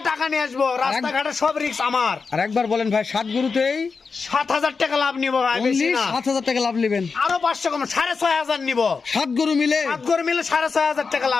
টাকা নিয়ে আসবো, রাস্তাঘাটে সব রিস্ক আমার। আর একবার বলেন ভাই, 7 গরুতেই 7000 টাকা লাভ নিবো ভাই, বেশি না। 7000 টাকা লাভ নেবেন, আরো 500 কম, 6500 নিবো। 7 গরু মিলে 7 গরু মিলে 6500 টাকা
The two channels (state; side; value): quieter; right; 4.9 dB